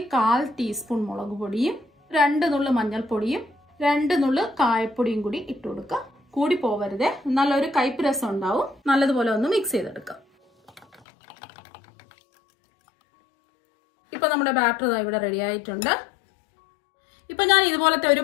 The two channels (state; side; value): drops out; right; at 11.0 s